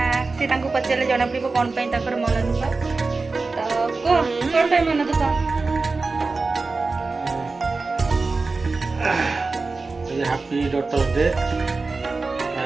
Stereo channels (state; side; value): quieter; left; 3.9 dB